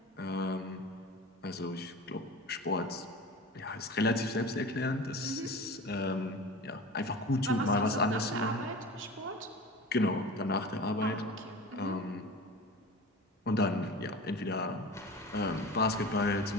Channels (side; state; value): both; normal; correlation 0.34